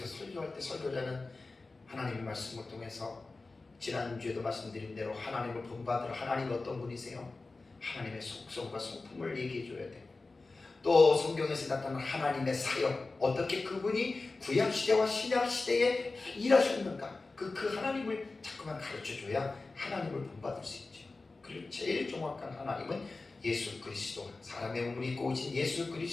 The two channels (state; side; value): quieter; right; 3.6 dB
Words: 설교할 때 설교자는 하나님의 말씀을 통해서 지난주에도 말씀드린 대로 하나님을 본받으러, 하나님 어떤 분이세요? 하나님의 속성과 성품을 얘기해 줘야 돼요. 또 성경에서 나타난 하나님의 사역, 어떻게 그분이 구약시대와 신약시대에 일하셨는가, 그 하나님을 자꾸만 가르쳐줘야 하나님을 본받을 수 있죠. 그리고 제일 정확한 하나님은 예수 그리스도, 사람의 몸을 입고 오신 예수